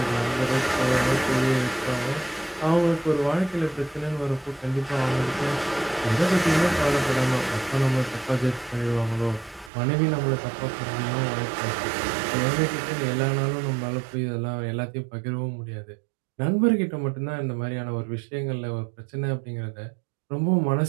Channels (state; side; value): drops out; left; at 9.7 s